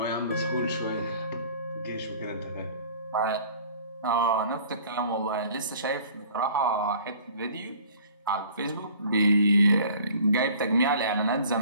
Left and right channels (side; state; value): both; inverted; correlation -0.50